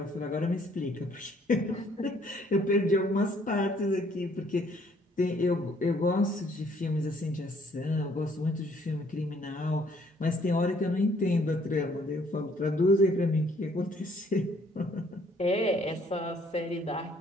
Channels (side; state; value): both; normal; correlation 0.63